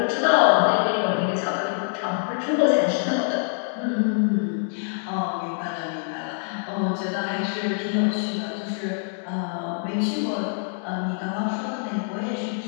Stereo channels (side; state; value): right; silent; 62 dB below the other